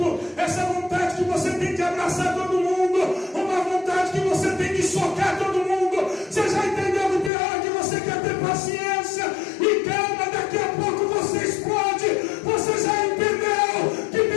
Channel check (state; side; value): drops out; right; at 7.3 s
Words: essa vontade que você tem de abraçar todo mundo, uma vontade que você tem de socar todo mundo, você já entendeu que tem hora que você quer ter paciência e calma, daqui a pouco você explode? Você já entendeu que